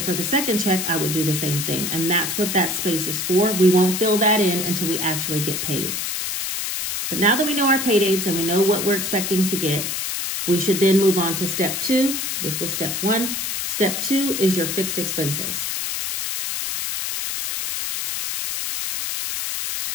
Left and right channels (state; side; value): noise; left; hiss, 2 dB below the sound